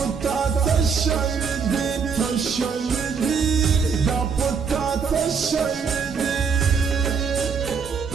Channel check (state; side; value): quieter; left; 5.9 dB